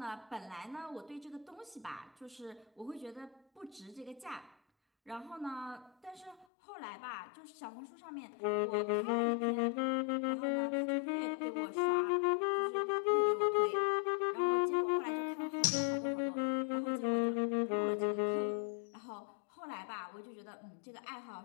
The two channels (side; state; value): right; drops out; at 6.5 s